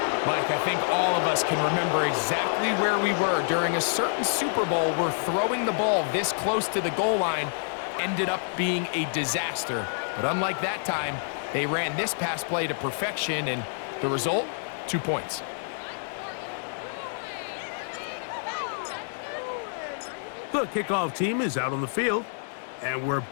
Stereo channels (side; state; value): right; silent; digital silence